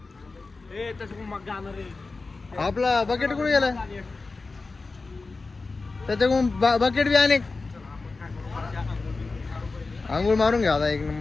तसं मग जाणार रे. आपला बकेट कुठे गेला, त्याच्याकडून बकेट बी अनेक. आंघोळ मारून घ्या आता एक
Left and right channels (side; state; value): right; quieter; 3.8 dB